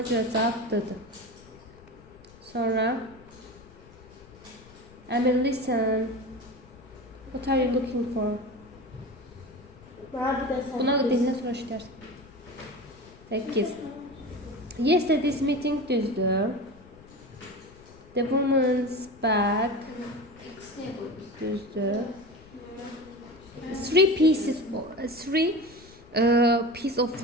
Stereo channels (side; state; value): left; noise; rumble, 23 dB below the sound